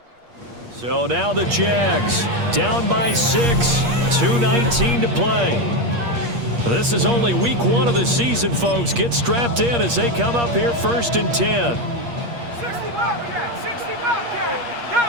So now the Jags down by 6, 2:19 to play. This is only week 1 of the season, folks. Get strapped in as they come up here first and 10. 60 Bobcat, 60 Bobcat,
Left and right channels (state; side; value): late; left; 8.5 ms